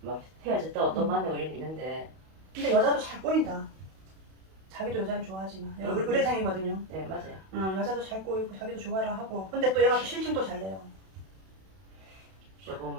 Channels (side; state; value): left; late; 32 ms